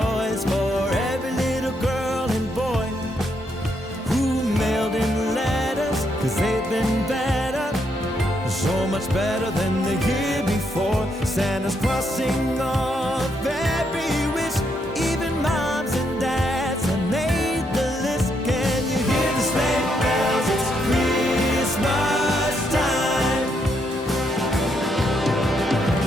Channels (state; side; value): normal; both; correlation 0.77